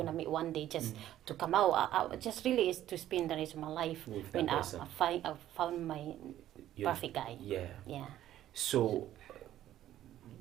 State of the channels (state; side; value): quieter; left; 12.7 dB